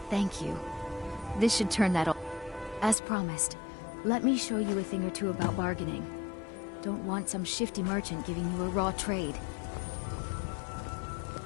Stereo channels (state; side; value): drops out; right; at 3.0 s